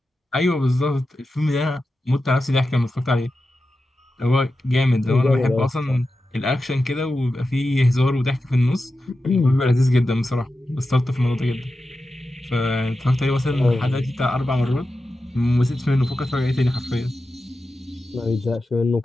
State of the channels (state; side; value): normal; both; correlation 0.91